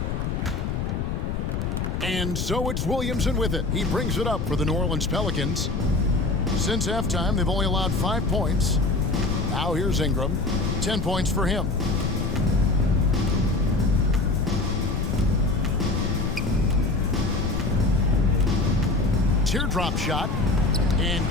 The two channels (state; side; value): noise; left; rumble, 2 dB below the sound